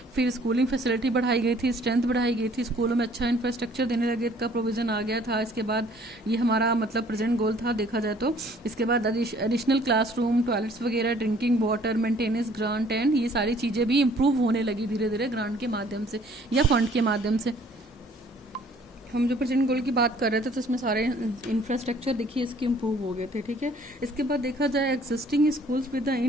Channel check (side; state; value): both; normal; correlation 0.57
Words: फिर स्कूलिंग फैसिलिटी बढ़ाई गई थी, स्ट्रेंथ बढ़ाई गई थी, स्कूलों में अच्छा इंफ्रास्ट्रक्चर देने लगे का प्रोविजन आ गया था। इसके बाद ये हमारा मतलब प्रेजेंट गोल था देखा जाए तो। इसके बाद एडिशनल क्लासरूम, टॉयलेट्स वगैरह, drinking water, maintenance grant and ये सारी चीजें भी इम्प्रूव होने लगी धीरे धीरे ग्रांट के माध्यम से या फंड के माध्यम से। हम जो प्रेजेंट गोल की बात कर रहे थे तो इसमें सारे इंफ्रास्ट्रक्चर देखिए इसके इम्प्रूव हो गए थे, ठीक है। इसके बाद देखा जाए existing schools with the